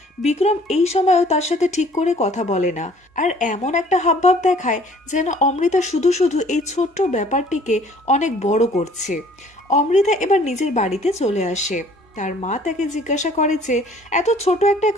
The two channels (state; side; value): normal; both; correlation 0.55